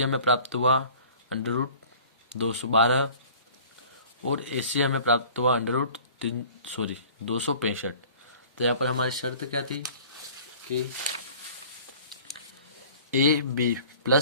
हमें प्राप्त हुआ √212 और AC हमें प्राप्त हुआ 265। तो यहाँ पर हमारी शर्त क्या थी कि AB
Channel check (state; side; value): inverted; both; correlation -0.48